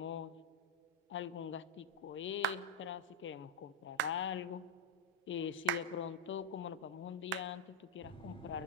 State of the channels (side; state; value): both; normal; correlation -0.04